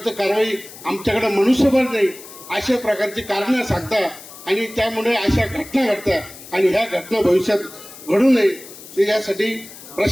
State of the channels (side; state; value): left; noise; hiss, 17 dB below the sound